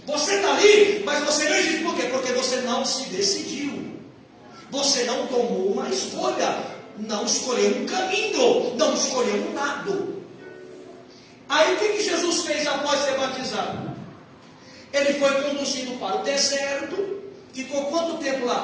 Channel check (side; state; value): both; identical; correlation 1.00